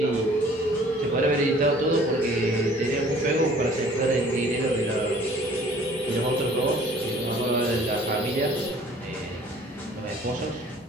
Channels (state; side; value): normal; both; correlation 0.52